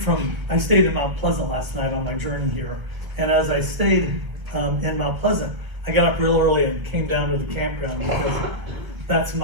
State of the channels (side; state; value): left; late; 1.5 ms